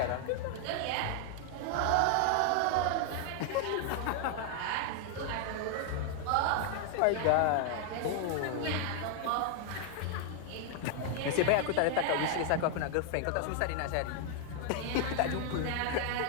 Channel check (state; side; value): different; both; correlation 0.00